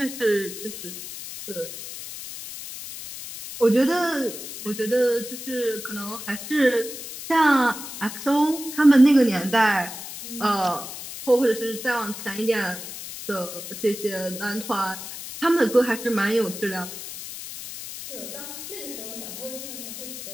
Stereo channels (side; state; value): left; noise; hiss, 10 dB below the sound